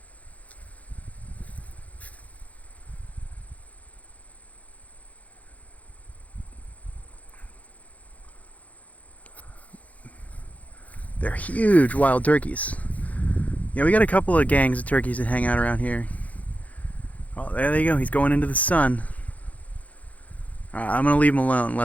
They're huge wild turkeys. Yeah, we got a couple of gangs of turkeys that hang out around here. Oh, there they go. He's going into the sun. Alright, I'm gonna leave them alone and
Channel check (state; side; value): late; right; 0.071 ms